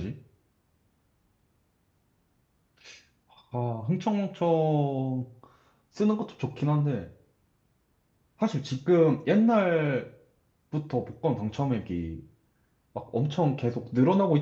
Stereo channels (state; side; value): identical; both; correlation 1.00